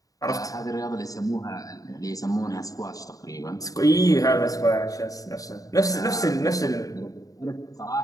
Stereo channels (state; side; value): late; right; 0.17 ms